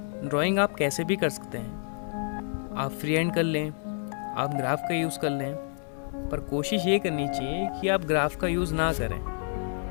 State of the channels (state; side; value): silent; right; digital silence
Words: ड्राइंग आप कैसे भी कर सकते हैं, आप फ्री हैंड कर लें, आप ग्राफ का यूज़ कर लें, पर कोशिश ये करनी चाहिए कि आप ग्राफ का यूज़ ना करें,